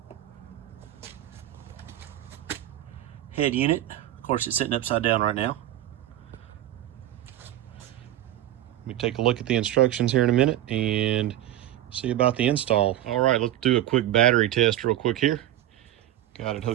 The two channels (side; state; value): left; quieter; 13.4 dB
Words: Head unit. Of course, it's sitting upside down right now. Let me take a look at the instructions here in a minute and see about the install. All right, let's do a quick battery test real quick here. Got it